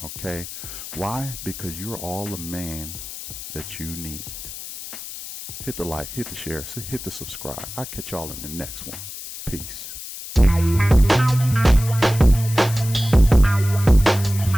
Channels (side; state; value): left; noise; hiss, 11 dB below the sound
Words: Okay? Why? Because you're all the man that you need. Hit the like, hit the share, hit the subscribe. I'll catch y'all in the next one. Peace.